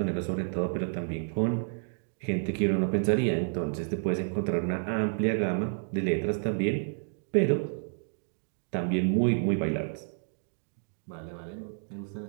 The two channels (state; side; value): silent; left; digital silence